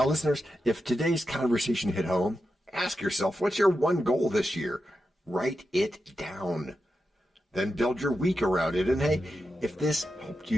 listeners, if today's conversation hit home, ask yourself, what's your one goal this year? Write it down. Then build your week around it. And hey, if this helped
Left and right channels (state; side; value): normal; both; correlation 0.89